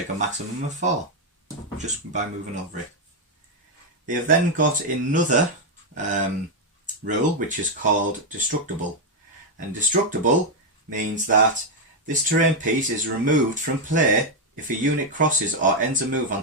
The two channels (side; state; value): both; normal; correlation 0.02